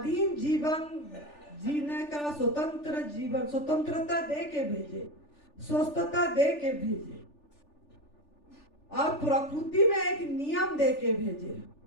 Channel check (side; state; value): right; late; 3.4 ms